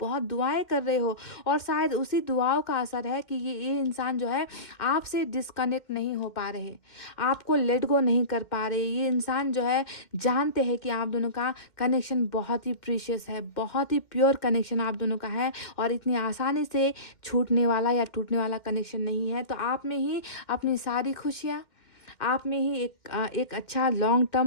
बहुत दुआएं कर रहे हो, और शायद उसी दुआओं का असर है कि ये इंसान जो है आपसे डिस्कनेक्ट नहीं हो पा रहे, आपको लेट गो नहीं कर पा रहे। ये इंसान जो है जानते हैं कि आप दोनों का कनेक्शन बहुत ही प्रीशियस है, बहुत ही प्योर कनेक्शन आप दोनों का है, और इतनी आसानी से छूटने वाला या टूटने वाला कनेक्शन नहीं है। तो आप में ही अपनी सारी खुशियाँ, आप में ही एक अच्छा लॉन्ग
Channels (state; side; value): late; right; 2.1 ms